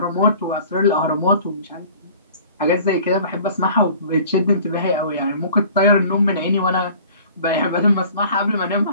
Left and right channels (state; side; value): inverted; both; correlation -0.47